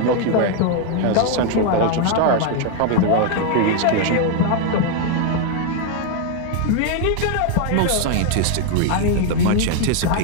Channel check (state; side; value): different; both; correlation 0.01